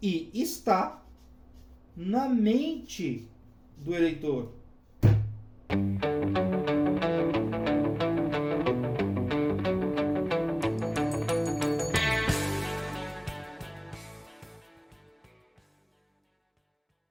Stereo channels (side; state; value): both; identical; correlation 1.00